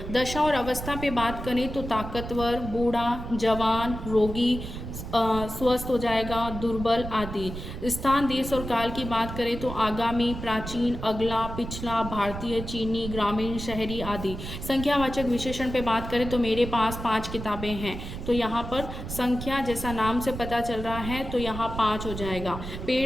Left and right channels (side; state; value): right; noise; rumble, 8 dB below the sound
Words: दशा और अवस्था पे बात करें तो ताकतवर, बूढ़ा, जवान, रोगी, स्वस्थ हो जाएगा, दुर्बल आदि। स्थान, देश और काल की बात करें तो आगामी, प्राचीन, अगला, पिछला, भारतीय, चीनी, ग्रामीण, शहरी आदि। संख्यावाचक विशेषण पे बात करें तो मेरे पास 5 किताबें हैं, तो यहाँ पर संख्या जैसा नाम से पता चल रहा है, तो यहाँ 5 हो जाएगा।